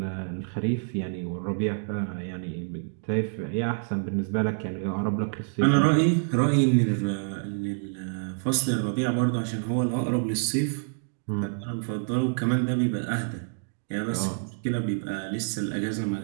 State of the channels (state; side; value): silent; left; digital silence